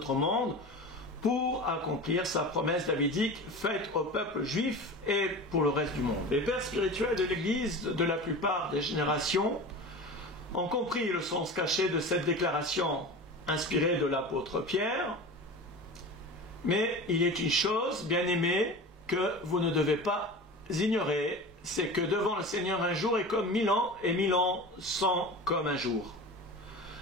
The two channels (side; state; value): both; normal; correlation 0.33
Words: monde, pour accomplir sa promesse davidique faite au peuple juif et pour le reste du monde. Les pères spirituels de l'Église de la plupart des générations ont compris le sens caché de cette déclaration inspirée de l'apôtre Pierre, mais il est une chose, bien-aimés, que vous ne devez pas ignorer, c'est que devant le Seigneur un jour est comme 1000 ans et 1000 ans sont comme un jour.